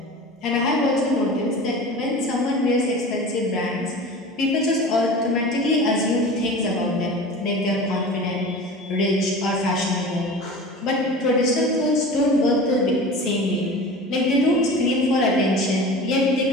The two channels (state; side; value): normal; both; correlation 0.36